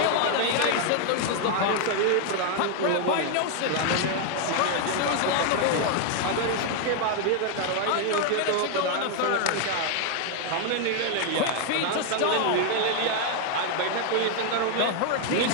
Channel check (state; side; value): different; both; correlation 0.00